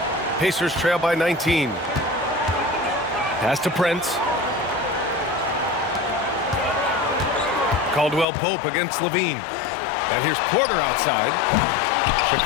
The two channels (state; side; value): drops out; right; at 8.2 s